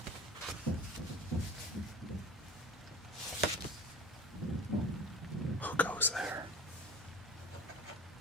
Who goes there?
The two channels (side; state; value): both; normal; correlation 0.37